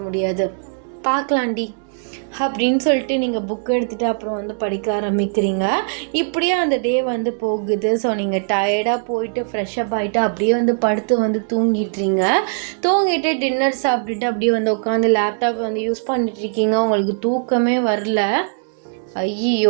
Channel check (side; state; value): left; silent; digital silence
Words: முடியாது. பார்க்கலாண்டி அப்படின்னு சொல்லிட்டு நீங்கள் புக் எடுத்துகிட்டு அப்புறம் படிக்க ஆரம்பிக்கிறீங்க. இப்படியே அந்த டே போகுது. ஸோ நீங்கள் டயர்டாக போயிட்டு ஃப்ரெஷ்அப் ஆகிட்டு அப்படியே படுத்து தூங்கிட்டுறீங்க. தூங்கிட்டு டின்னர் சாப்பிட்டுட்டு அப்படியே உட்காந்து லேப்டாப் யூஸ் பண்ணிட்டுருக்கீங்க. உங்களுக்கு தூக்கமே வரல.